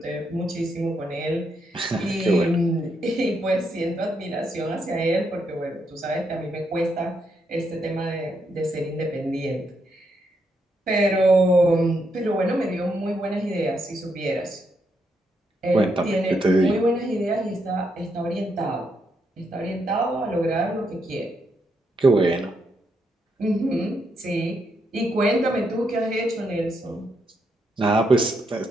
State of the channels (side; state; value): both; normal; correlation 0.79